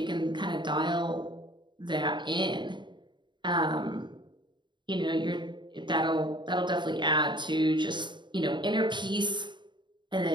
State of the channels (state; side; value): late; left; 0.22 ms